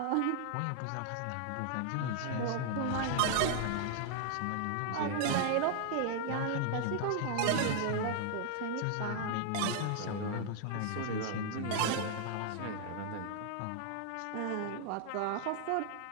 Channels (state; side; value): different; both; correlation 0.00